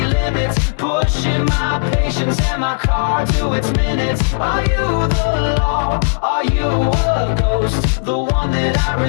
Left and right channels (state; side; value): silent; right; digital silence